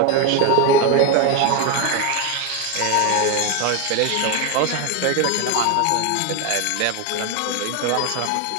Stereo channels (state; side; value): different; both; correlation 0.02